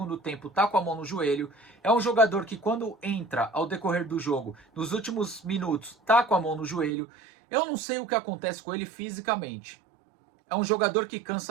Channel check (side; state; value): left; drops out; at 6.9 s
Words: tempo tá com a mão no joelho. É um jogador que quando entra ao decorrer do jogo, nos últimos minutos, tá com a mão no joelho. Eu não sei o que acontece com ele fisicamente. É um jogador que